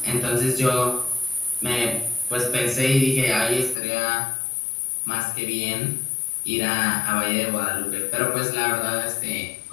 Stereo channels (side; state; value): right; drops out; at 3.8 s